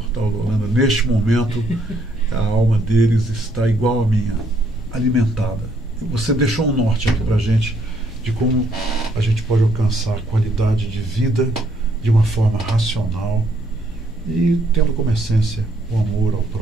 do Holanda, neste momento, a alma deles está igual à minha, alimentada. Você deixou um norte aqui para a gente de como a gente pode alcançar qualidade de vida de uma forma racional e tendo como essência o amor ao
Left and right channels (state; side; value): normal; both; correlation 0.71